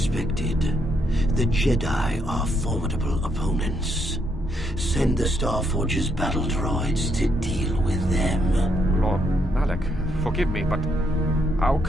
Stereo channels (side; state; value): both; normal; correlation 0.75